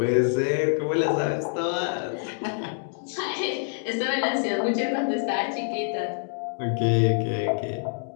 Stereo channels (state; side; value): silent; right; digital silence